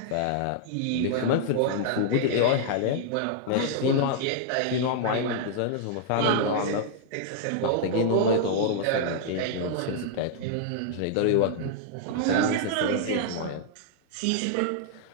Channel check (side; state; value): both; different; correlation -0.01